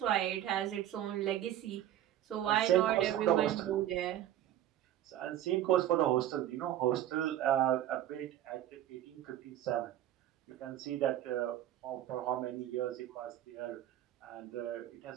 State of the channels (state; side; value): quieter; left; 12.2 dB